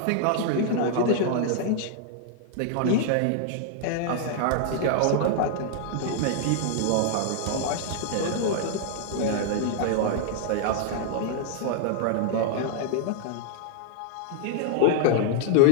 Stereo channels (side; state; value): both; different; correlation -0.01